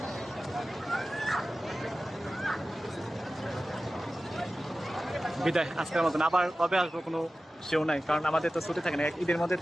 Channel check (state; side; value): normal; both; correlation 0.95